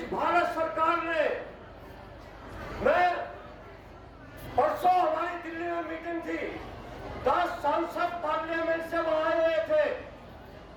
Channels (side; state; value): both; identical; correlation 1.00